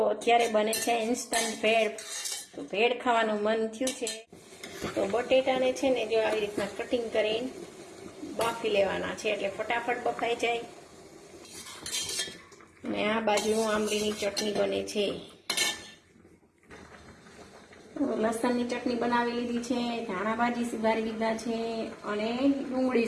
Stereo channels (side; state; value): both; identical; correlation 1.00